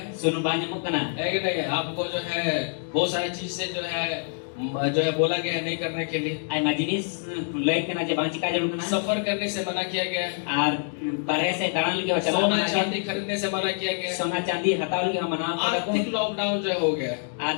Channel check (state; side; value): silent; right; 61 dB below the other